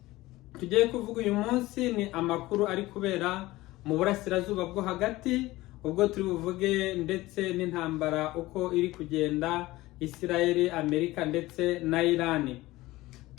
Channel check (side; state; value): right; quieter; 18.5 dB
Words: tugiye kuvuga uyu munsi ni amakuru ari kubera mu burasirazuba bwo hagati, ubwo turi buvuge ndetse n'intambara uko iri kugenda Israel, Amerika ndetse na Iran.